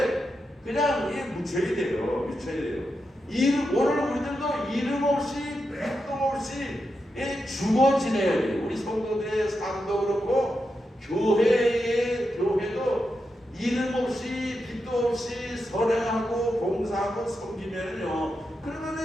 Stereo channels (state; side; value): normal; both; correlation 0.87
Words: 그냥 묻혀야 돼요. 오늘 우리들도 이름 없이 백도 없이 죽어 지내야 돼요. 우리 성도들의 삶도 그렇고 교회도 이름 없이 빛도 없이 선행하고 봉사하고 섬기면요,